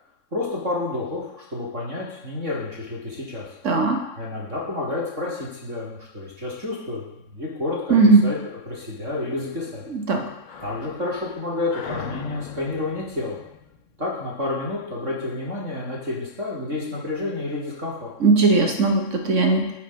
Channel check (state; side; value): late; left; 3.6 ms